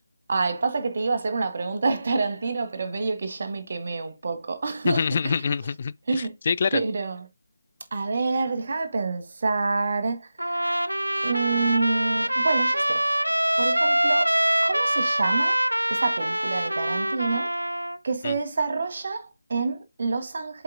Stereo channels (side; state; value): both; inverted; correlation -0.92